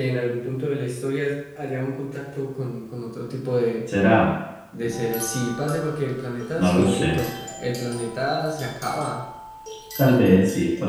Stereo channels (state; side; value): identical; both; correlation 1.00